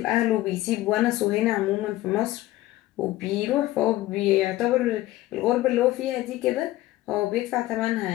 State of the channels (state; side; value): quieter; right; 16.3 dB